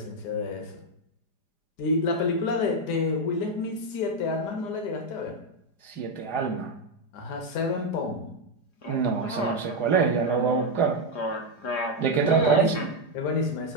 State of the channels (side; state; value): right; late; 4.9 ms